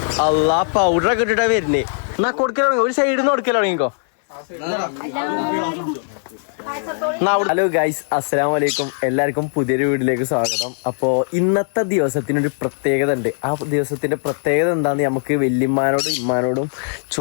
അല്ലാ പൗഡറൊക്കെ ഇട്ടിട്ടാ വരുന്നേ. എന്നാ കൊടുക്കൽ ഒരു സൈഡിൽ നിന്ന് കൊടുക്കൽ തുടങ്ങിക്കോ. ഹലോ ഗൈസ്, അസ്സലാമു അലൈക്കും. എല്ലാവർക്കും പുതിയൊരു വീഡിയോയിലേക്ക് സ്വാഗതം. അപ്പോൾ ഇന്നത്തെ ദിവസത്തിനൊരു പ്രത്യേകത ഉണ്ട്. ആ ദിവസത്തിന്റെ പ്രത്യേകത എന്താന്ന് നമുക്ക് വല്യമ്മാനോടും ഇമ്മാനോടും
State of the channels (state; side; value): silent; right; 60 dB below the other